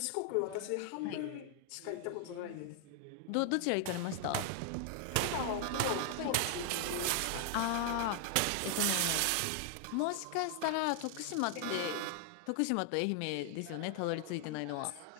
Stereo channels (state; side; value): different; both; correlation 0.00